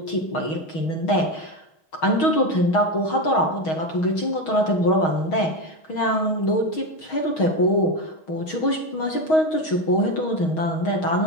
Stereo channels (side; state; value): right; late; 6.3 ms